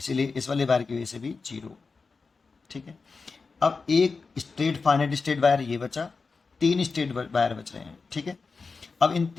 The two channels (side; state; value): right; quieter; 4.5 dB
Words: इस वाले वायर की वजह से भी जीरो। ठीक है। अब एक स्ट्रेट फाइनाइट स्ट्रेट वायर ये बचा, 3 स्ट्रेट वायर बच रहे हैं। ठीक है। अब इन